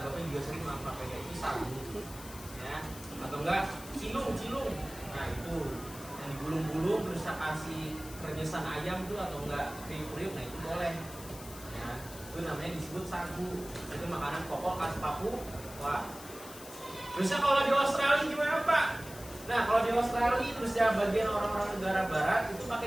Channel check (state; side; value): noise; left; hiss, 15 dB below the sound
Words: juga sering makan papeda, itu sagu. Ya, atau enggak cilung. Nah itu yang digulung-gulung terus kasih renyesang ayam tuh atau enggak kriuk-kriuk, nah itu boleh. Ya, itu namanya disebut sagu. Itu makanan pokok khas Papua. Terusnya kalau di Australia gimana Pak? Nah kalau di Australia terus ya bagian orang-orang negara barat itu